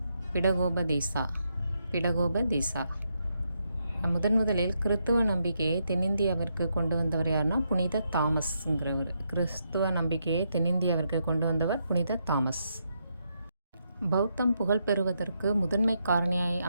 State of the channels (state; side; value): inverted; both; correlation -0.80